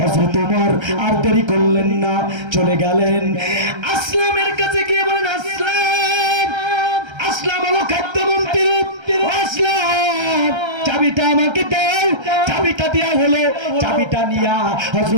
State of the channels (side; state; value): left; late; 1.3 ms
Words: হযরত ওমর আর দেরি করলেন না, চলে গেলেন আসলামের কাছে গিয়ে বলেন, আসলাম, আসলাম হলো খাদ্যমন্ত্রী, আসলাম, চাবিটা আমাকে দাও। চাবিটা দেয়া হলো, চাবিটা নিয়া